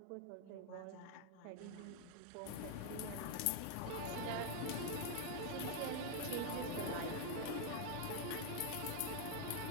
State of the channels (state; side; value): different; both; correlation 0.00